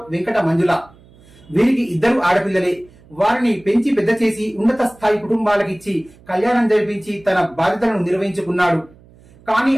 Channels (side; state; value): right; noise; hum, 26 dB below the sound